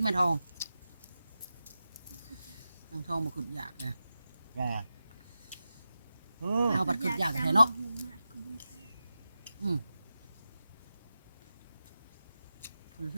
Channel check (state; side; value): inverted; both; correlation -0.92